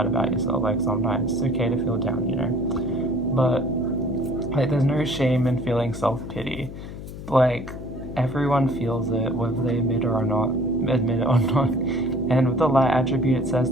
about yourself. Like sometimes it's okay to feel down, you know. But like there's no shame in feeling self-pity. Like everyone feels it, whether they admit it or not. And with the light attribute, it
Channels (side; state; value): left; noise; hum, 11 dB below the sound